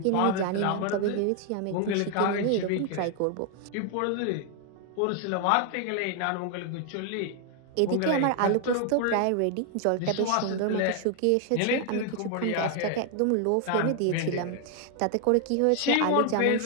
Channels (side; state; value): both; different; correlation 0.00